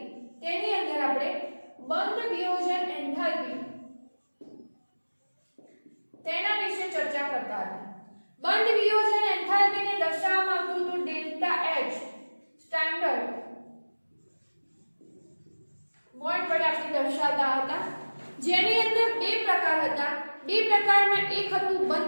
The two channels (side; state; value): both; inverted; correlation -1.00